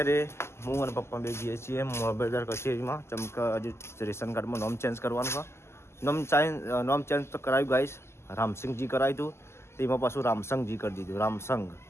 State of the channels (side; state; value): right; late; 0.13 ms